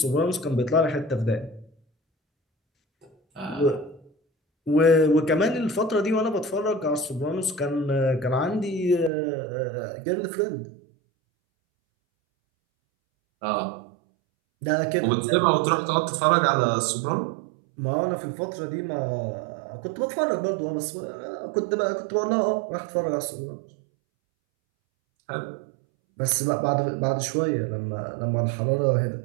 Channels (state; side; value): drops out; left; at 9.1 s